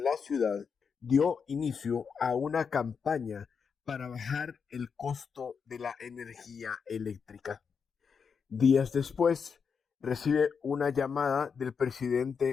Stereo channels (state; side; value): quieter; right; 6.1 dB